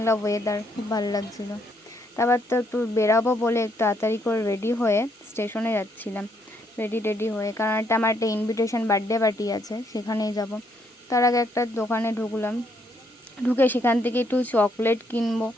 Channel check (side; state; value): both; normal; correlation 0.72